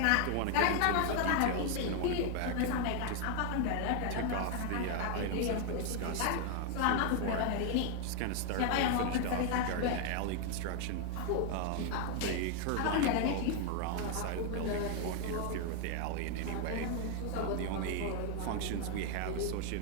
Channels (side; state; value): both; different; correlation 0.01